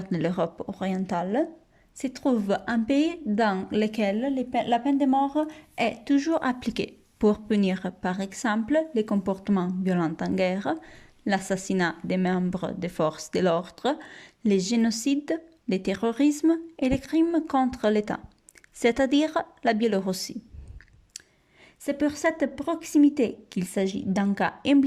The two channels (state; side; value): identical; both; correlation 1.00